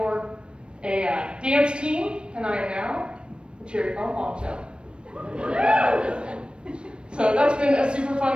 a dance team, and I am now the Cherry Farm Bombshell. So that's been a super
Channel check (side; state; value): left; late; 0.056 ms